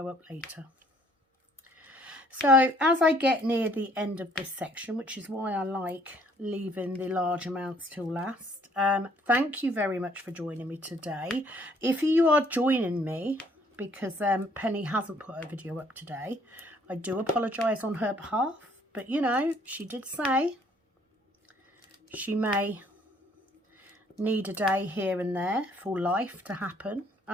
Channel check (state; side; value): normal; both; correlation 0.62